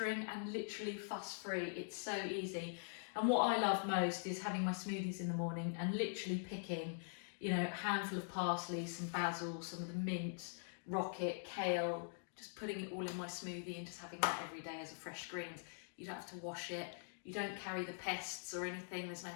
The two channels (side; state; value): right; silent; digital silence